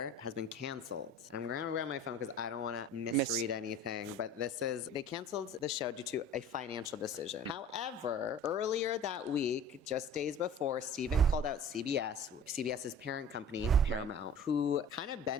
has been canceled. I'm going to grab my phone because I don't want to misread anything, but they canceled the show due to a financial decision. However, earlier that week, just days before, Stephen called out CBS's parent company, Paramount, who kind of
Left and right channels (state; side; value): normal; both; correlation 0.42